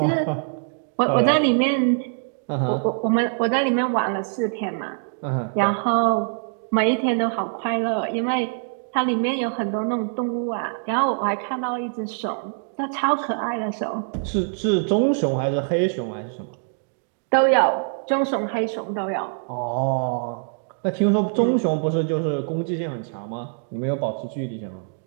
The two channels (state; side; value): silent; left; digital silence